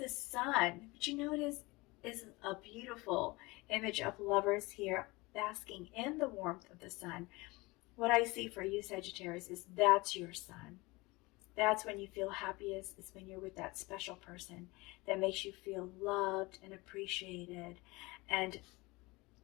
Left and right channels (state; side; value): quieter; right; 23.3 dB